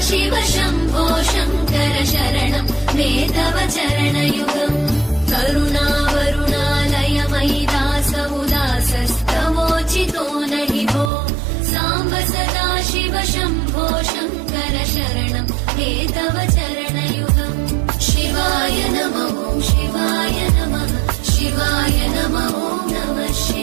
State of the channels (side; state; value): left; drops out; at 11.1 s